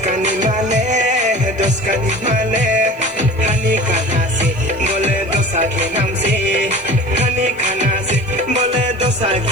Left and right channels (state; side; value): noise; right; hiss, 29 dB below the sound